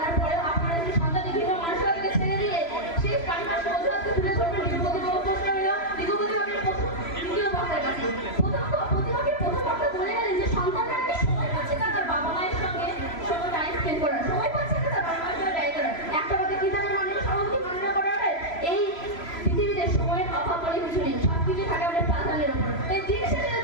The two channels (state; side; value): late; right; 3.0 ms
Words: পরেও আপনারা কি সন্তানের ভিন্ন মানসিকতাকে ছেড়ে দিয়ে শেষ পারিপার্শ্বিক অজুহাতকে তুলে ধরবেন? বিগত প্রশ্ন হইল বিগত দ্বিতীয় বক্তার কাছে। প্রতিপক্ষের প্রথম বক্তা বলে গেলেন যে সন্তানরা কি সময় পাচ্ছে না তার বাবা মায়ের সঙ্গে সময় টাইম স্পেন্ড করার, সময় পাচ্ছে না তার বাবা মায়ের সঙ্গে ব্যয় করার। একটা কথা কি জানেন মাননীয় সভাপতি, মাননীয় করার এই পৃথিবীতে সময়ের অভাব বলে কিছু নেই, সবকিছু থাকে আমাদের প্রাধান্যের উপর। এই দিন শেষে